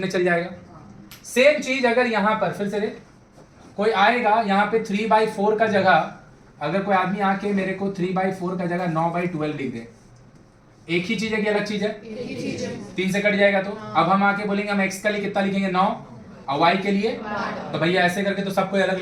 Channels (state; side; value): identical; both; correlation 1.00